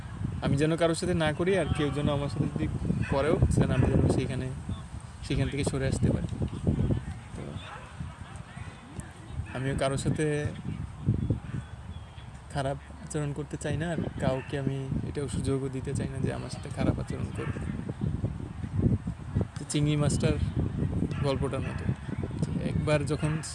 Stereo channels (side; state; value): both; identical; correlation 1.00